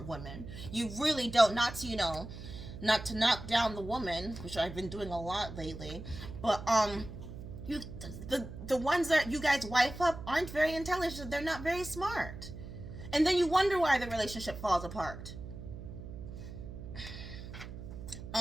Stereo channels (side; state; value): right; noise; hum, 11 dB below the sound